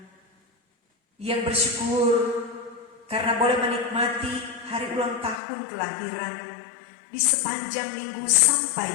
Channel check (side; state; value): right; drops out; at 5.4 s